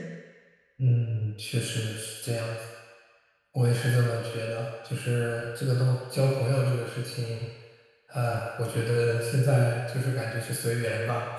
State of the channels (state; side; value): identical; both; correlation 1.00